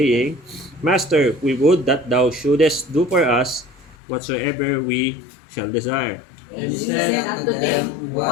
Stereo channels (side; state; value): right; drops out; at 4.0 s